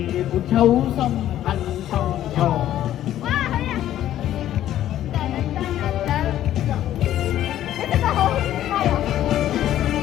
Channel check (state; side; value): quieter; right; 12.3 dB